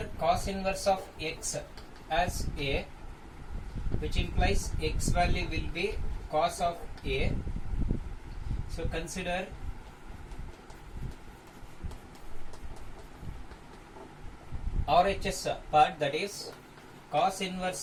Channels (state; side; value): identical; both; correlation 1.00